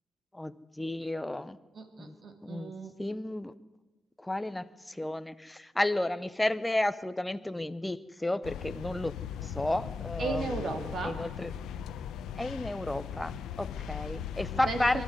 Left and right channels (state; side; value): normal; both; correlation 0.91